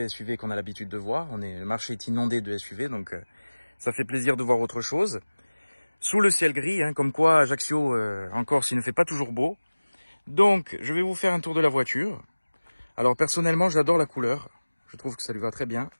SUV qu'on a l'habitude de voir. Le marché est inondé de SUV donc ça fait plaisir de voir autre chose. Sous le ciel gris, comme quoi Ajaccio en Corse il ne fait pas toujours beau. Donc je vais vous faire un tour de la voiture. Alors personnellement j'adore la couleur, je trouve que ça lui va très bien.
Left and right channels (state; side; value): inverted; both; correlation -1.00